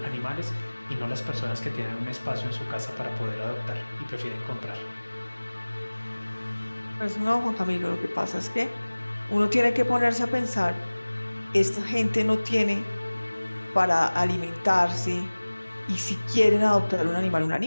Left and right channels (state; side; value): inverted; both; correlation -1.00